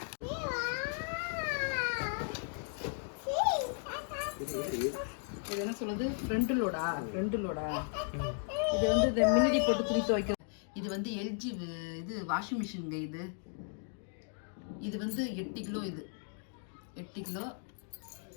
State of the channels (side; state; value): right; silent; 54 dB below the other